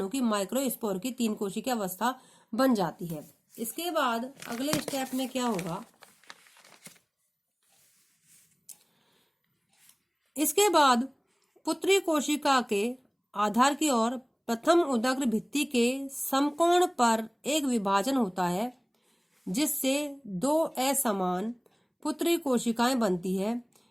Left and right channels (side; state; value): both; identical; correlation 1.00